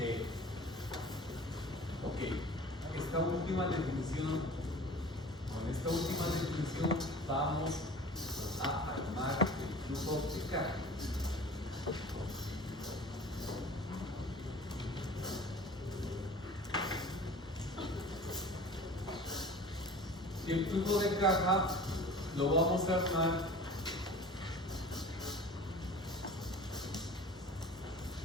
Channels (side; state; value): both; normal; correlation 0.42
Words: Ok. Esta última definición, con esta última definición vamos a armar el flujo de caja. Y el flujo de caja lo vamos a armar